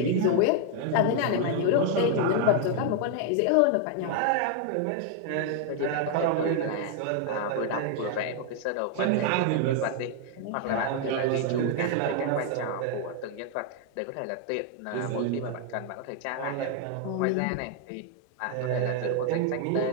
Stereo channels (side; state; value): both; different; correlation 0.00